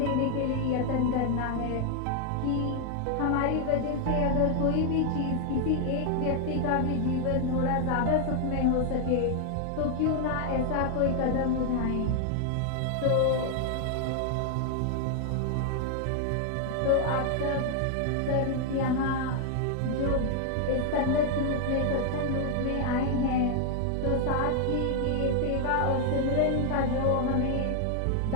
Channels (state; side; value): different; both; correlation 0.00